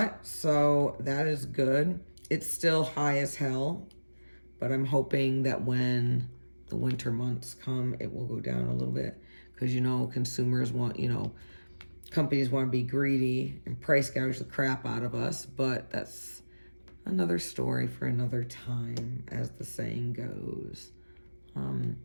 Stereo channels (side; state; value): both; inverted; correlation -1.00